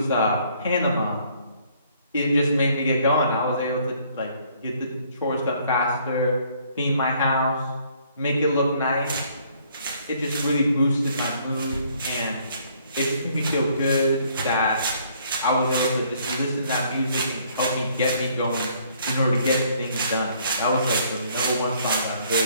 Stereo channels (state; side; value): inverted; both; correlation -0.63